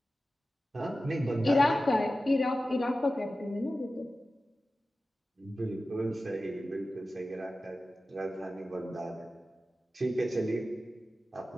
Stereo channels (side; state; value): both; normal; correlation 0.94